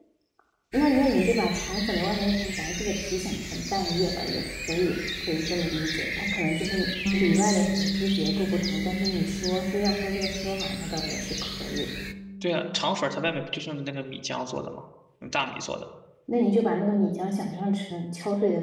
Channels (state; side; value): identical; both; correlation 1.00